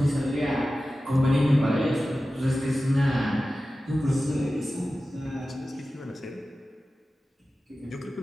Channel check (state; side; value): normal; both; correlation 0.95